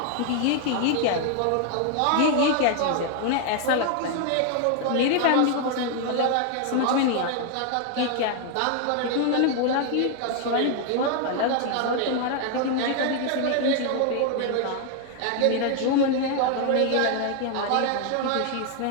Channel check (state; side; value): different; both; correlation 0.00